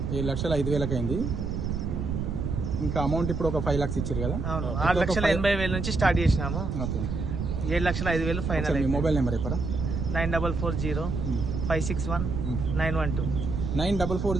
7,05,000 అయింది. ఇంకా అమౌంట్ ఇప్పుడు ఒక 5 lakhs ఇచ్చారు కదా? అవును, 6,80,000 నుంచి స్టార్ట్ చేసినాము. Okay, 7,05,000 final. మీ మొబైల్ నెంబర్ చెప్పరా? 9440561912.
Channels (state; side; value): noise; right; rumble, 2 dB below the sound